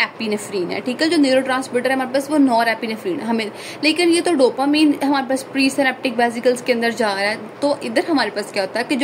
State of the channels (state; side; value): identical; both; correlation 1.00